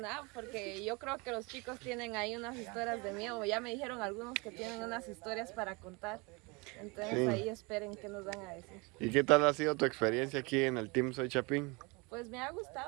porque yo creo que los chicos tienen ahí unas historias de miedo. Ya me dijeron algunos que tienen unas historias para contar. Entonces Sí. ahí esperen qué nos van a decir. ¿Y qué tal ha sido tu experiencia aquí en el Team Soy Chapín? Pues me ha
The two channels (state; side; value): quieter; left; 27.9 dB